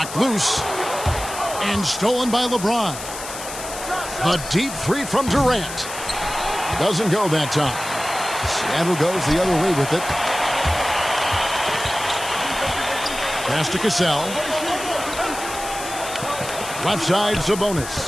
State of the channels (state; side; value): noise; left; hiss, 10 dB below the sound